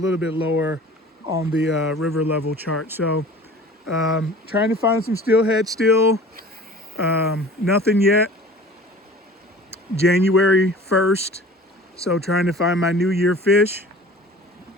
bit lower on the river level chart. So trying to find some steelhead still. Nothing yet. January 1st. So trying to find my New Year fish.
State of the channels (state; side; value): normal; both; correlation 0.43